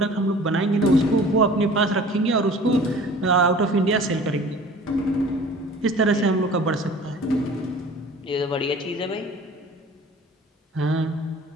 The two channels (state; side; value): normal; both; correlation 0.45